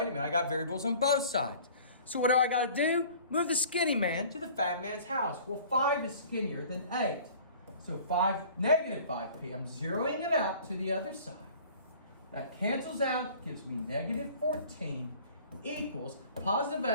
a minute, I got variables on both sides. So what do I got to do? Move the skinny man to the fat man's house. Well, 5 is skinnier than 8. So negative 5p. I'm zeroing it out to the other side. That cancels out, gives me negative 14 equals positive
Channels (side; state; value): both; inverted; correlation -0.48